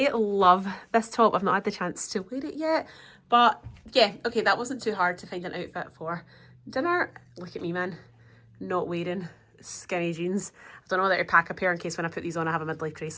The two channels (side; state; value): both; identical; correlation 1.00